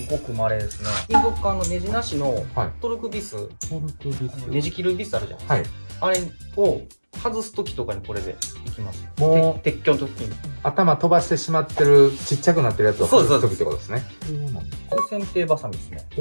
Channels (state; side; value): inverted; both; correlation -1.00